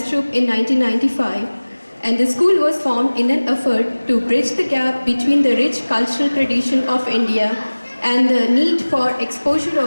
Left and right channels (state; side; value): inverted; both; correlation -1.00